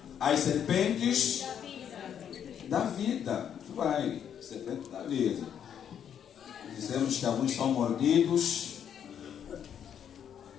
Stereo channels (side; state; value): right; quieter; 8.8 dB